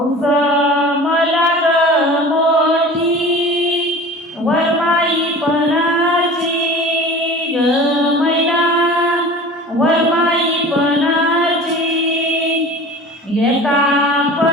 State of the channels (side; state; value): both; normal; correlation 0.39